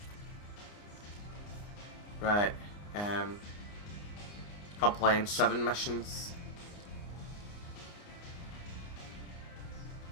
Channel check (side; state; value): right; late; 29 ms